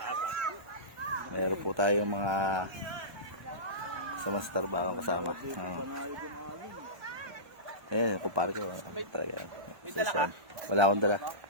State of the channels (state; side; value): late; left; 1.3 ms